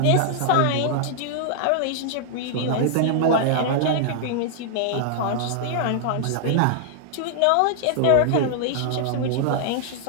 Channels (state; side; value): different; both; correlation -0.01